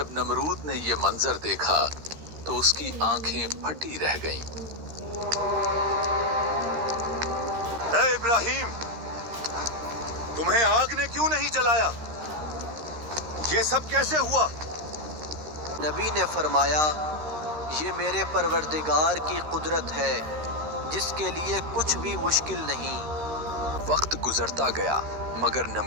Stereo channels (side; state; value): left; late; 13 ms